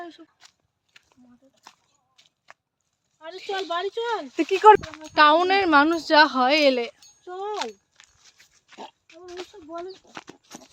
এসব। আরে চল বাড়ি চল। তুই কি কর, টাউনের মানুষ যা হয় এলে। চল ওইসব বলে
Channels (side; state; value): both; identical; correlation 1.00